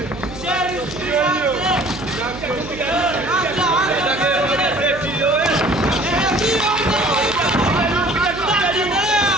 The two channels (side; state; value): right; noise; hum, 14 dB below the sound